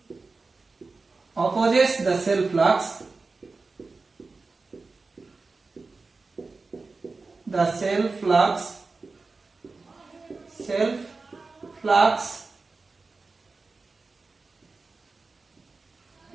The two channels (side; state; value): left; quieter; 3.9 dB